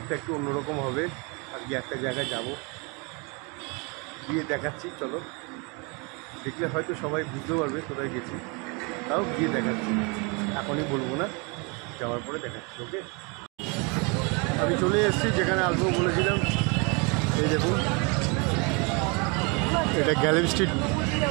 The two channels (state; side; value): quieter; left; 31.3 dB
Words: একটু অন্যরকম হবে। আজকে একটা জায়গায় যাব, গিয়ে দেখাচ্ছি। চলো, দেখলে হয়তো সবাই বুঝতে পারবে কোথায় গেছি, তাও গিয়ে দেখাচ্ছি। এখনই বলবো না, যাওয়ার পরে দেখাচ্ছি। ওকে, আমি চলে এসেছি যেখানে আসবো বলেছিলাম। এই দেখুন, এটা গ্যালেরি স্ট্রিট